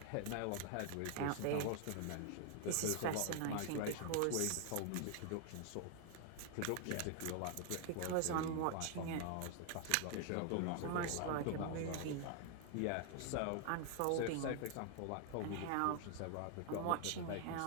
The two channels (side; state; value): both; different; correlation 0.00